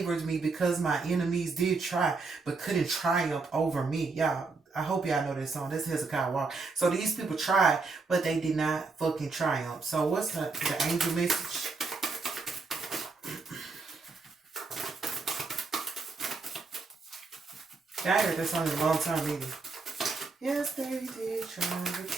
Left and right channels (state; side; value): quieter; left; 4.1 dB